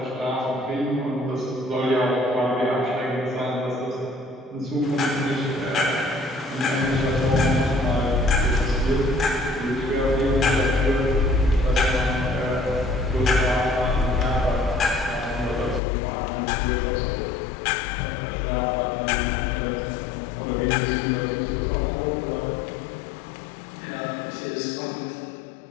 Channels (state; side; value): drops out; right; at 15.8 s